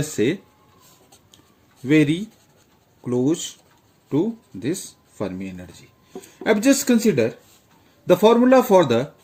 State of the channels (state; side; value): identical; both; correlation 1.00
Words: say, very close to this Fermi energy. I've just consider the formula for